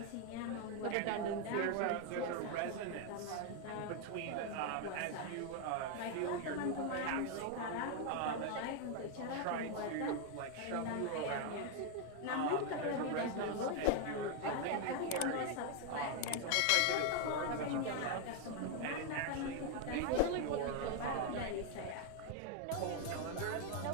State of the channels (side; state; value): both; different; correlation 0.01